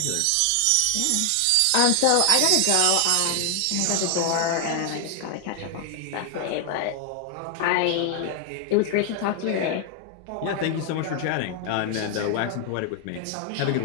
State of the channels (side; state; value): both; different; correlation 0.00